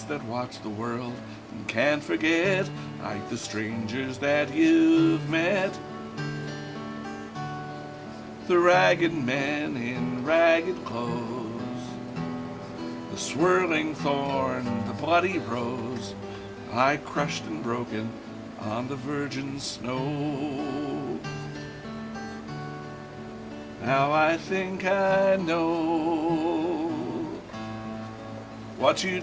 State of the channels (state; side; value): identical; both; correlation 1.00